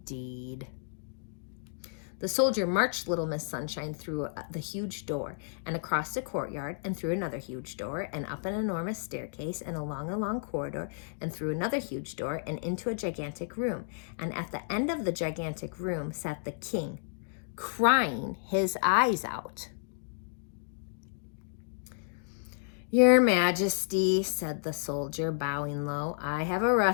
The soldier marched Little Miss Sunshine through the huge door and across the courtyard and through another huge door and up an enormous staircase and along a long corridor and through another huge door and into a gigantic room. And at the end of the gigantic room sat the king, crying his eyes out. Your Majesty, said the soldier, bowing low, I have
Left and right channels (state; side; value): silent; right; digital silence